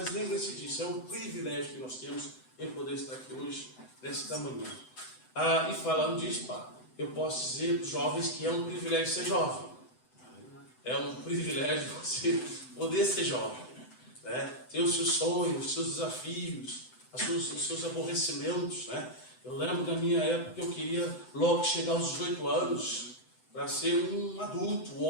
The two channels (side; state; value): right; late; 7.9 ms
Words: lembre-se disso, é um privilégio que nós temos em poder estar aqui hoje, nesta manhã. E falando disso, eu posso dizer para os jovens que é um privilégio ser jovem. É um privilégio você poder ser jovem, né? Ter os seus sonhos, os seus desafios, os seus aborrecimentos, né? Eu lembro da minha época que eu queria logo chegar aos 18 anos para ser um adulto, um